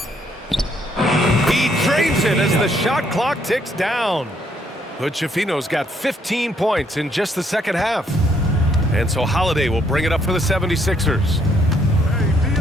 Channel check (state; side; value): normal; both; correlation 0.70